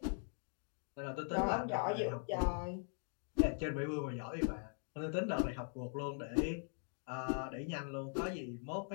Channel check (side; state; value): right; silent; 50 dB below the other